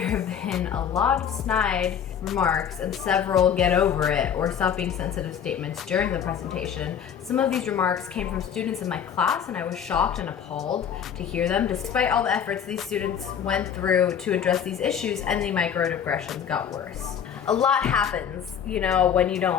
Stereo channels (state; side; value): quieter; right; 8.2 dB